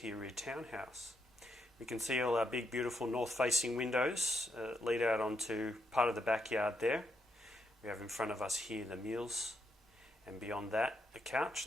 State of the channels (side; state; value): both; normal; correlation 0.80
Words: rear townhouse. We can see all our big, beautiful north-facing windows lead out onto part of the backyard there. We have in front of us here the meals, and beyond that, the couch